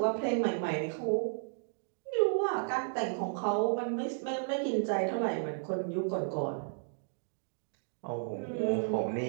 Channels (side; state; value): left; silent; digital silence